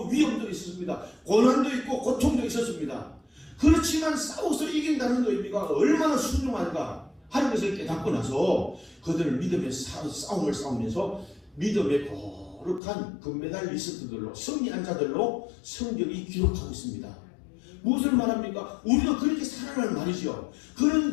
위험도 있었습니다. 고난도 있고 고통도 있었습니다. 그렇지만 싸워서 이긴다는 의미가 얼마나 순종한가 하는 것을 깨닫고 나서 그들은 믿음의 싸움을 싸우면서 믿음의 거룩한 금메달리스트들로 승리한 자들로 성경이 기록하고 있습니다. 무엇을 말합니까? 우리가 그렇게 살아라는 말이죠. 그런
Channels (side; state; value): right; drops out; at 12.8 s